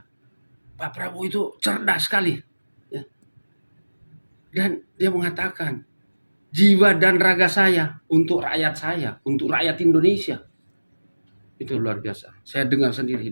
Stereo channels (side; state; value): both; inverted; correlation -1.00